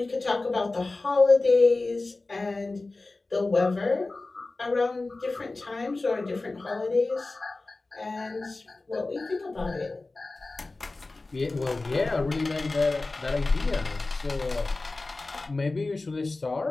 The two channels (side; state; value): right; quieter; 3.3 dB